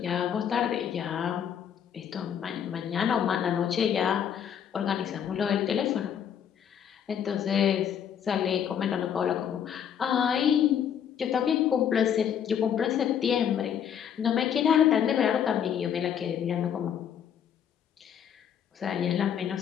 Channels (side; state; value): right; quieter; 8.7 dB